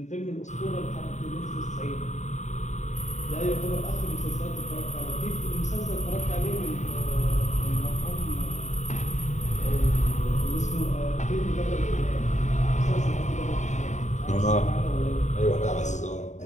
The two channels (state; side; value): late; right; 0.34 ms